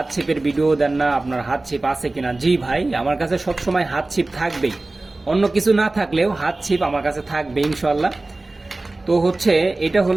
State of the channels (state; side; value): quieter; left; 3.0 dB